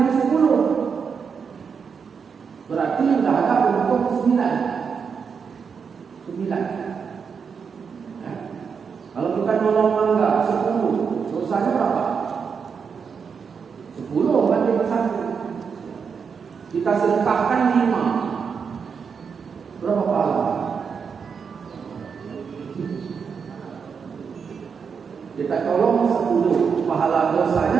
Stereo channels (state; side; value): quieter; left; 6.1 dB